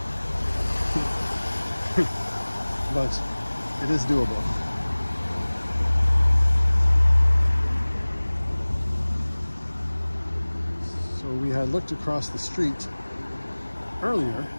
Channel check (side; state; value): both; inverted; correlation -1.00